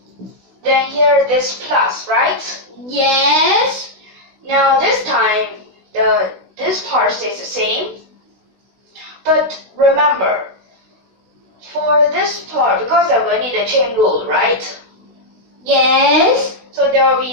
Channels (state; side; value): late; left; 16 ms